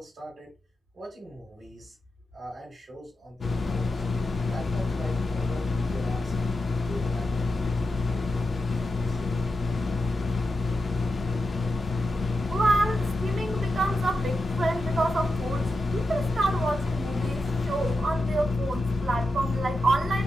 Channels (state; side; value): normal; both; correlation 0.89